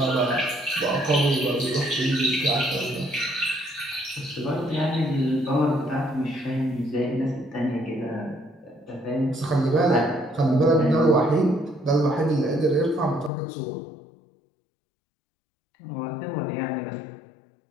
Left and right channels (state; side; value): drops out; right; at 13.3 s